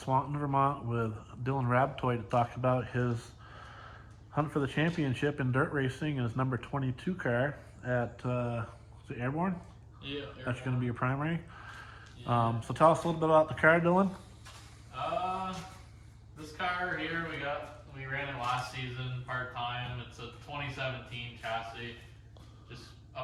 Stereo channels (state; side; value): identical; both; correlation 1.00